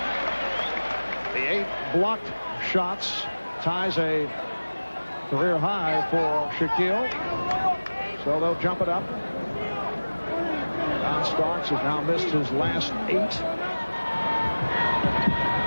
The 8 blocked shots ties a career high for Shaquille. So they'll jump it up. John Starks has now missed his last 8.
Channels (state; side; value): inverted; both; correlation -1.00